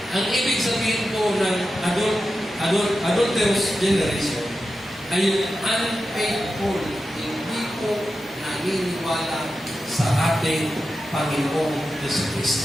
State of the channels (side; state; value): both; normal; correlation 0.91